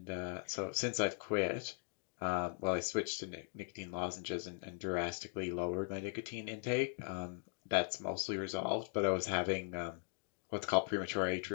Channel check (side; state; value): right; silent; 51 dB below the other